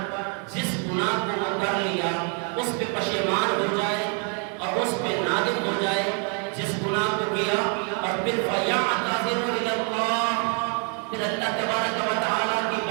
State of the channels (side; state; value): left; quieter; 39.2 dB